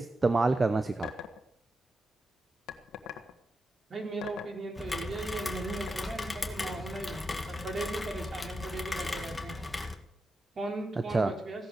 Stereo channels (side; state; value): both; normal; correlation 0.88